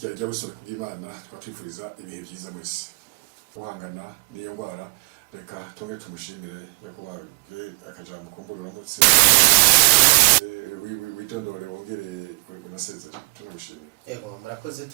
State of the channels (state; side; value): quieter; left; 31.7 dB